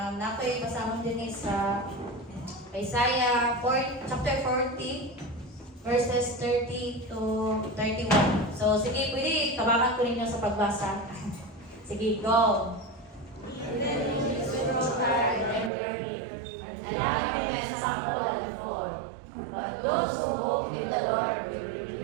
nakoy basahon din sa Isaiah chapter 40 verses 30 to 31. So sige, pwede tabangan ko ninyo sa pagbasa. Sige, go. But those who hope in the Lord will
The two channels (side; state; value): left; drops out; at 15.7 s